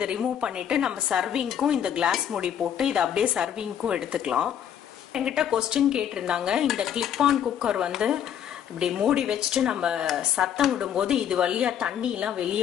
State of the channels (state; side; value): quieter; right; 9.4 dB